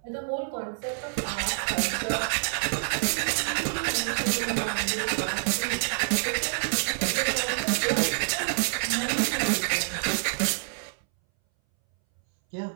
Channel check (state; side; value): silent; left; 60 dB below the other